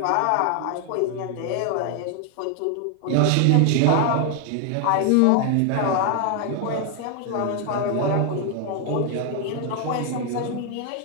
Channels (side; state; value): both; different; correlation 0.01